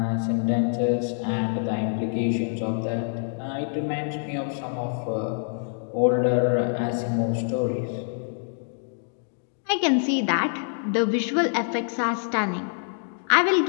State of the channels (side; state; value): right; silent; digital silence